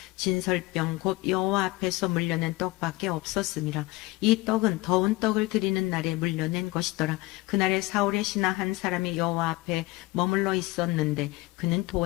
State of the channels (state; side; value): quieter; right; 20.8 dB